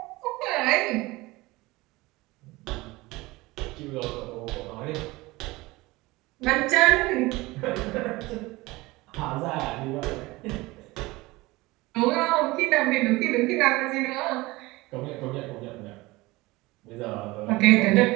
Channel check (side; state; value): left; quieter; 21.0 dB